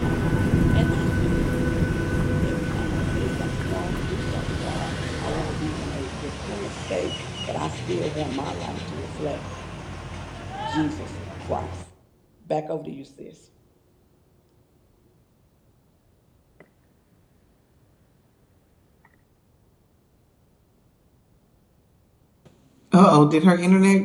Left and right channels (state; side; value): identical; both; correlation 1.00